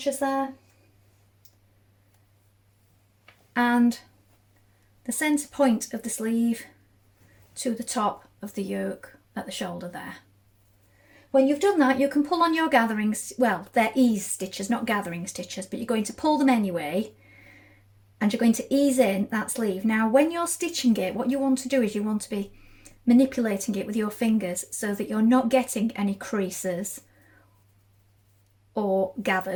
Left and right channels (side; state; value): both; identical; correlation 1.00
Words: there, and the centre point of the sleeve to the top of the yoke at the shoulder there. When you've done that, you can pull on your gathering, well, they're ease stitches, not gathering stitches, but you're going to pull them anyway, and you're going to ease in that sleeve. Now, when you're stitching it, what you want to do is you want to be manipulating it with your fingers so that you're not getting any creases or